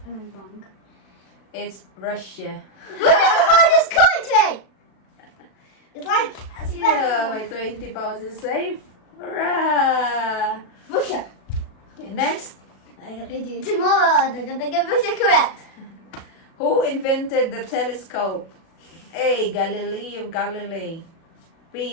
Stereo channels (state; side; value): late; right; 36 ms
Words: and I'm wrong. It's Russia. Look at the largest country! It's like Yeah, my 20 pounds is safe. Hurrah! Russia. Okay, next. I'm gonna do it tomorrow. They're gonna get Russia correct. Who invented the telescope? A. Galileo Galilei,